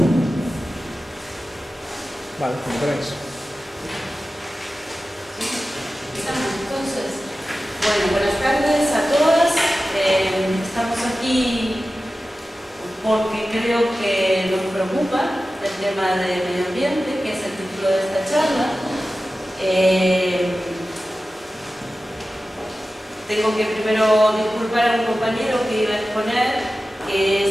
Vale, como queráis. Entonces, bueno, buenas tardes a todas. Estamos aquí porque creo que nos preocupa el tema del medio ambiente, que es el título de esta charla. Tengo que primero disculpar a un compañero que iba a exponer, que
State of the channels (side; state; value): both; normal; correlation 0.95